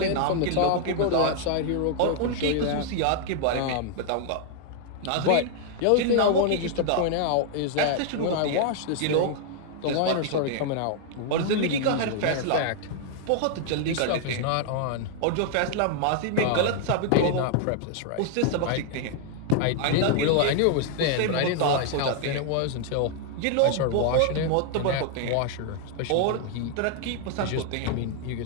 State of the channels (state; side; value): different; both; correlation 0.00